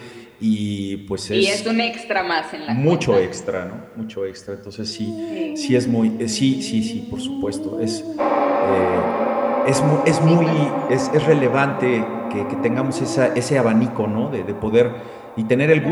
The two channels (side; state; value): both; identical; correlation 1.00